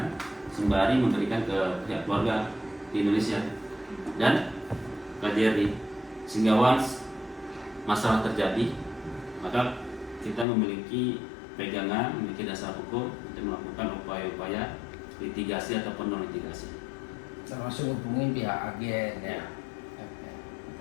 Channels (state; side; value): drops out; right; at 10.5 s